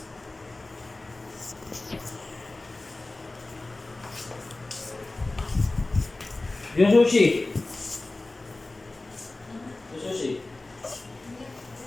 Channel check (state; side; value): quieter; right; 3.0 dB